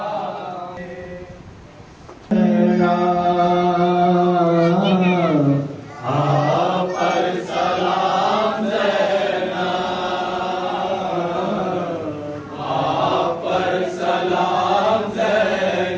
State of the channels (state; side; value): identical; both; correlation 1.00